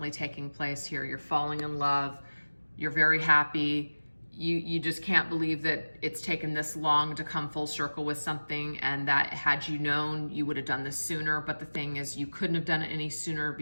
taking place here. You're falling in love, you're very happy, you just can't believe that it's taken this long to come full circle with something, and that had you known, you would have done this sooner. But the thing is, you couldn't have done it any sooner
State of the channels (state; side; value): inverted; both; correlation -1.00